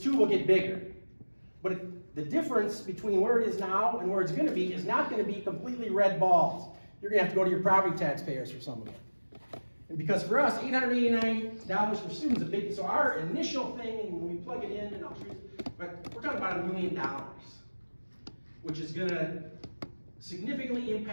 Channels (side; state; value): both; inverted; correlation -1.00